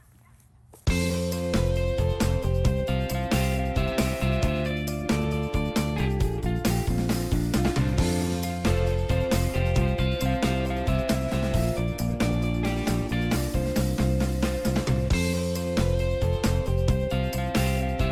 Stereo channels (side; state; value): both; identical; correlation 1.00